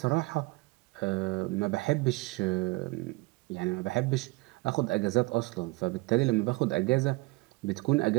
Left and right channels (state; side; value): quieter; left; 23.7 dB